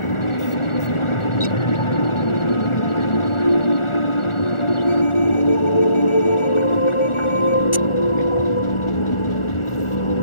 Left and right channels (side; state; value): right; late; 1.4 ms